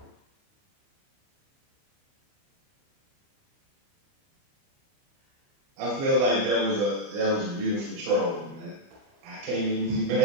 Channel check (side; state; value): left; late; 29 ms